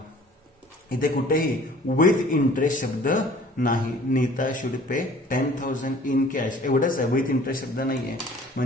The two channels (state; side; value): normal; both; correlation 0.51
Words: इथे कुठेही विथ इंटरेस्ट शब्द नाही. Neeta should pay 10,000 in cash एवढंच आहे, विथ इंटरेस्ट शब्द नाहीये.